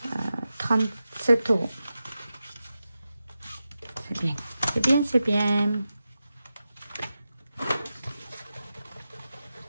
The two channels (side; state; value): both; inverted; correlation -0.92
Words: 37 €. C'est bien. C'est bien, c'est bien.